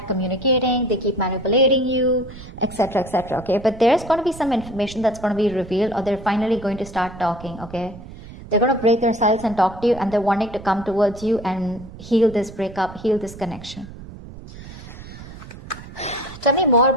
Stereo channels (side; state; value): right; noise; rumble, 15 dB below the sound